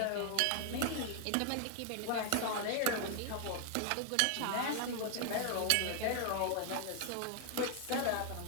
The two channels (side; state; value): both; different; correlation 0.00